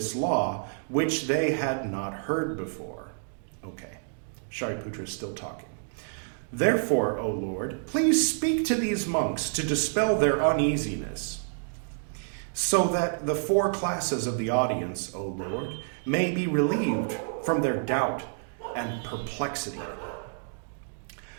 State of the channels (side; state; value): left; silent; digital silence